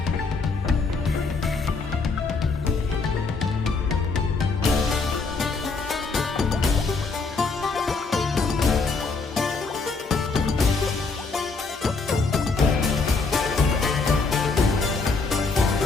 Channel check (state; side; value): quieter; right; 4.2 dB